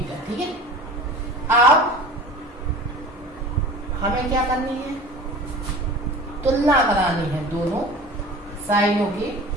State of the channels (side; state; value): both; normal; correlation 0.38